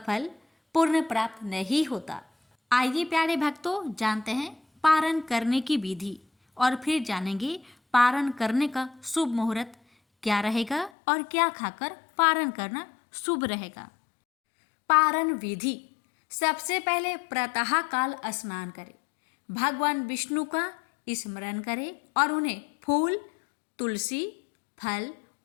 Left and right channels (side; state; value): right; drops out; at 10.9 s